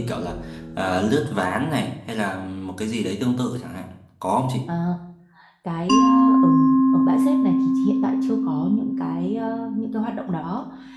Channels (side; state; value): both; identical; correlation 1.00